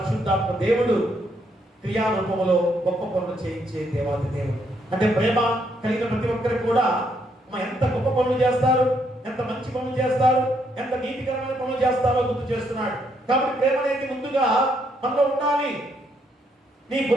దేవుడు క్రియారూపంలో గొప్ప పనులు చేయించే దేవాది దేవుడు. అంటే ప్రేమ కలిగిన ప్రతి ఒక్కరికి కూడా ఎంత గొప్ప పనులు చేస్తారు, ఎంత మంచి పనులు చేస్తారు, ఎంత నీతికరమైన పనులు చేస్తారో గుర్తు చేస్తున్నాడు. కాబట్టి ప్రేమ అనేది ముందుగా మనలో ఉండాలి. నీ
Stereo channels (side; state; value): both; normal; correlation 0.74